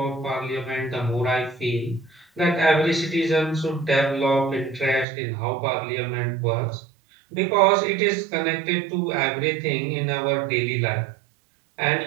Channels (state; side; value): drops out; left; at 5.1 s